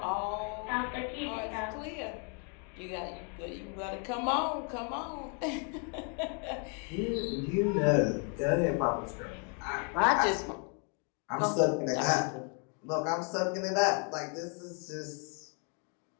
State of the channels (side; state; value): right; quieter; 38.8 dB